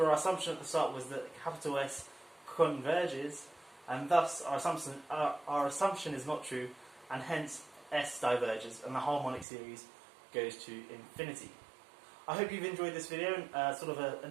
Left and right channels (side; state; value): left; drops out; at 9.5 s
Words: our assumption at the start was that capital S converges, and thus our assumption is not true, and hence S diverges, and the harmonic series goes to infinity. I hope you've enjoyed this video, sort of a